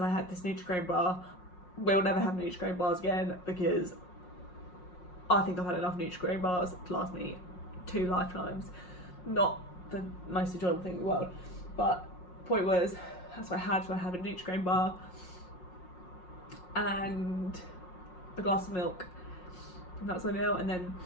I had this Nutri-Grain bar. We'll never have Nutri-Grain bars again, because I think I've had enough Nutri-Grain bars to last me 2 lifetimes. Not the most enjoyable thing in the world, but point was, that's what I had. So I had a Nutri-Grain bar and a glass of milk, and that was my meal. And then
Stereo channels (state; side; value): late; right; 5.5 ms